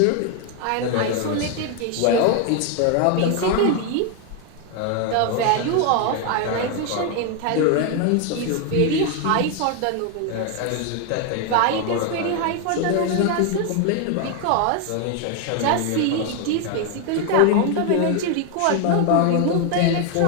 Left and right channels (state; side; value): different; both; correlation 0.01